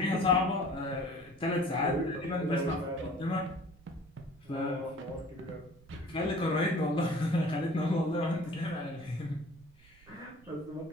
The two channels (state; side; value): noise; right; rumble, 26 dB below the sound